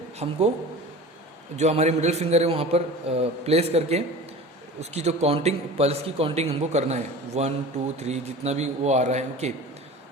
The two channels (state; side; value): normal; both; correlation 0.36